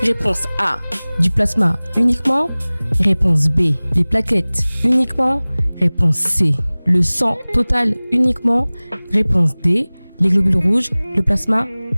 réponse A, du plasma uniquement, réponse B, les plaquettes uniquement, réponse C, le sang total uniquement, réponse D, les globules rouges, le plasma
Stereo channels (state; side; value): inverted; both; correlation -1.00